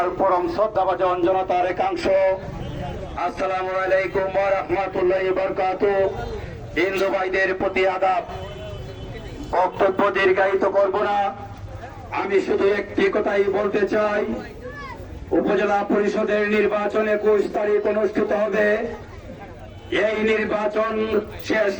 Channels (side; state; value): both; identical; correlation 1.00